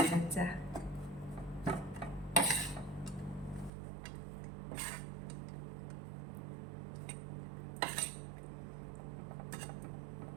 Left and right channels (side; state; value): left; drops out; at 3.7 s